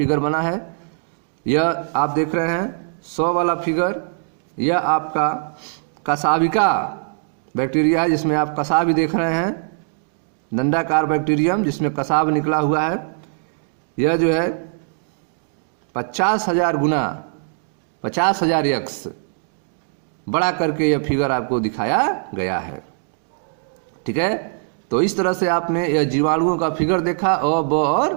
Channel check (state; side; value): silent; left; digital silence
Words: बना है। यह आप देख रहे हैं 100 वाला फिगर, यह आपका कसाविका बैक्टीरिया है जिसमें आप कसाव भी देख रहे हैं, दंडाकार बैक्टीरियम जिसमें कसाव निकला हुआ है। यह जो है 50,000 गुना 50,000 यक्स बड़ा करके यह फिगर आपको दिखाया गया है। ठीक है, तो इस तरह से आपने यह जीवाणुओं का फिगर देखा, अ, ब